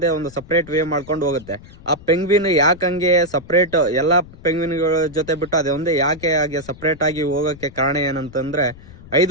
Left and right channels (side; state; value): left; noise; rumble, 19 dB below the sound